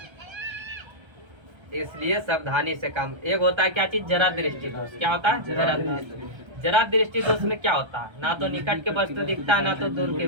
इसलिए सावधानी से काम। एक होता है क्या चीज, जरा दृष्टि दोष। क्या होता है, जरा दृष्टि। जरा दृष्टि दोष में क्या होता है, ना तो निकट के वस्तु दिखता है ना तो दूर की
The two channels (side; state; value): left; late; 1.3 ms